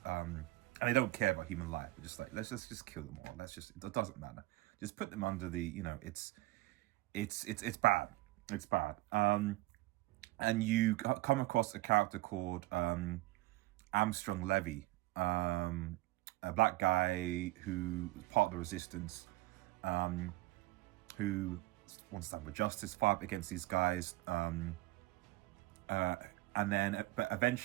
and they don't care about human life. They're just like, let's just kill them all. It doesn't matter. Just put them under the, you know, it's bad. It's bad. And you come across a character called angstrom Levy, a black guy who part of the resistance, who wants to have a justice fight against these guys. And then, but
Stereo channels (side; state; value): left; quieter; 19.1 dB